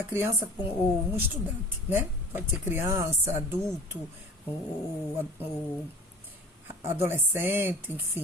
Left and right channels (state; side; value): normal; both; correlation 0.43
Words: criança ou um estudante, né? Pode ser criança, adulto, ou adolescente,